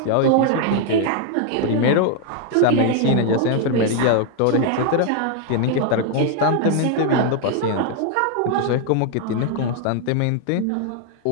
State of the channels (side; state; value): both; different; correlation 0.00